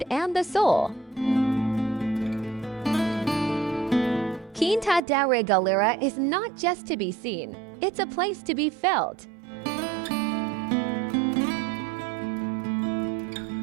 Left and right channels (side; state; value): left; drops out; at 5.0 s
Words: and the soul. Quinta da Regaleira is not just to be seen, it's a place to be felt.